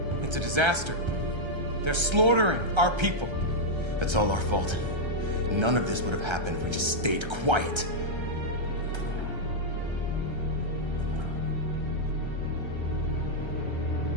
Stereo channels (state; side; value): late; left; 1.3 ms